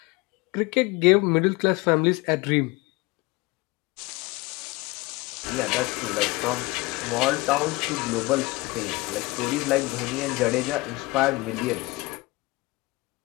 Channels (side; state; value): right; quieter; 22.4 dB